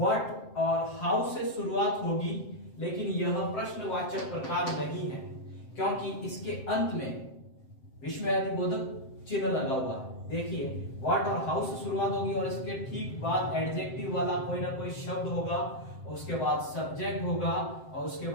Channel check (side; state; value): right; late; 7.6 ms